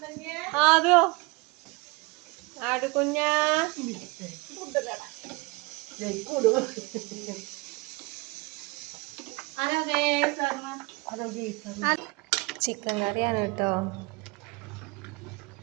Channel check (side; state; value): left; quieter; 25.4 dB